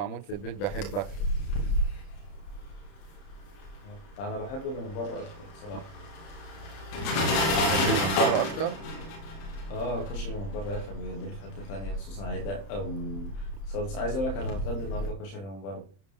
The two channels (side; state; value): right; late; 31 ms